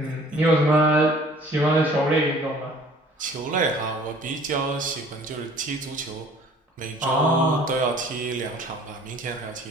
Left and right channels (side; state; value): both; normal; correlation 0.52